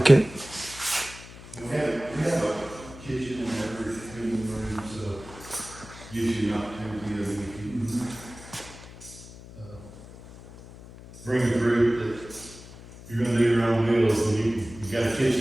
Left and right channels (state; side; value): noise; left; hum, 17 dB below the sound